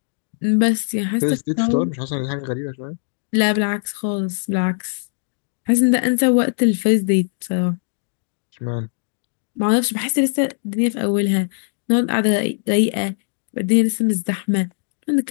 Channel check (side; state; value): right; silent; 65 dB below the other